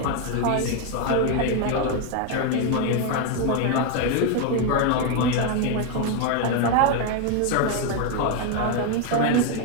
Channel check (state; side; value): different; both; correlation 0.01